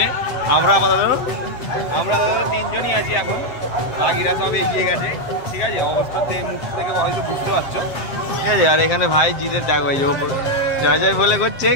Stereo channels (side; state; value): right; late; 7.7 ms